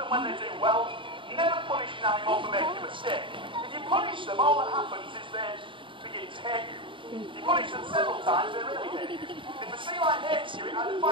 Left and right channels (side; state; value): left; late; 0.24 ms